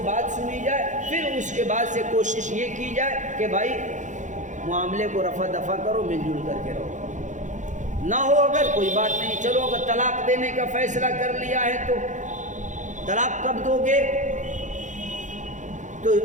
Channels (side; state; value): left; late; 0.36 ms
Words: بات سنی جائے، پھر اس کے بعد سے کوشش یہ کی جائے کہ بھائی معاملے کو رفع دفع کرو، مل جل کر کے رہو. نہ ہو اگر کوئی بات نہیں، چلو اگر طلاق دینے کا فیصلہ کر لیا ہے تو طلاق کب دو گے؟ تو